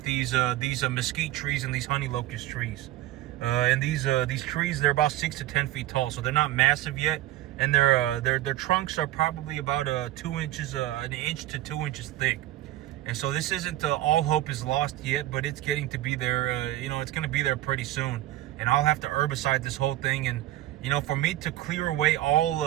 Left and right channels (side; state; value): left; quieter; 14.9 dB